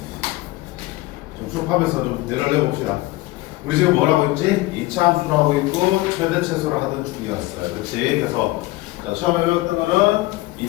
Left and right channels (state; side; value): quieter; right; 19.4 dB